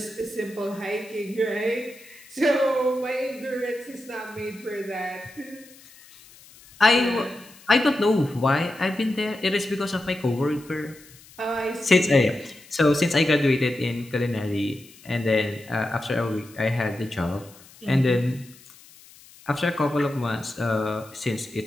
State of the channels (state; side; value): noise; left; hiss, 23 dB below the sound